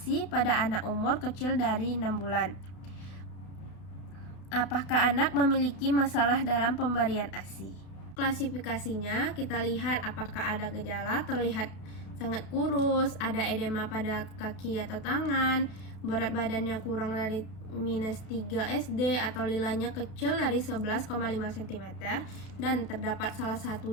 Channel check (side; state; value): right; late; 32 ms